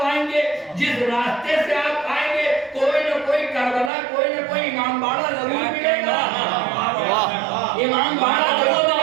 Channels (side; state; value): left; drops out; at 3.9 s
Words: آئیں گے, جس راستے سے آپ آئیں گے, کوئی نہ کوئی کربلا, کوئی نہ کوئی امام باڑہ ضرور ملے گا. امام باڑہ ضرور